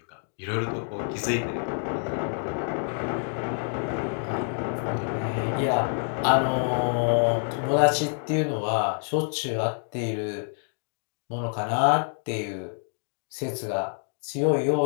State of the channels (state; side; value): silent; right; 59 dB below the other